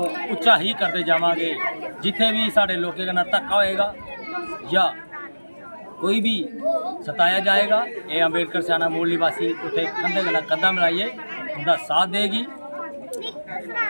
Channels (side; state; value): both; inverted; correlation -1.00